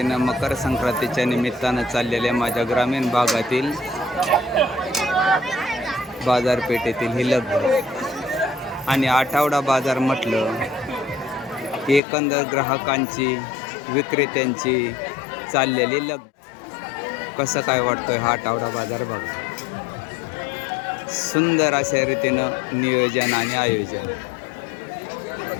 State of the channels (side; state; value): right; drops out; at 12.0 s